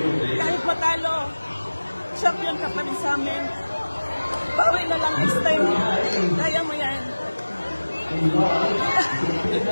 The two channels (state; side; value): inverted; both; correlation -1.00